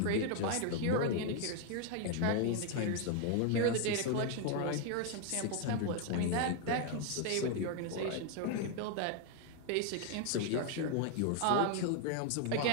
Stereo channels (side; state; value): both; different; correlation 0.01